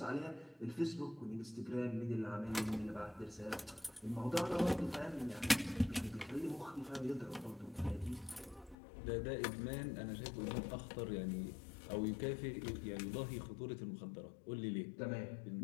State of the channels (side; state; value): right; drops out; at 8.8 s